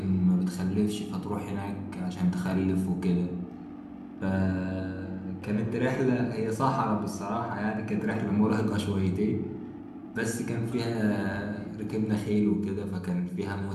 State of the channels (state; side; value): identical; both; correlation 1.00